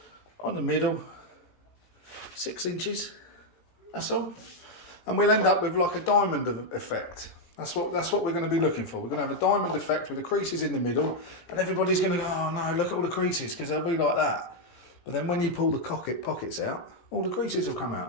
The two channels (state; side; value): late; right; 17 ms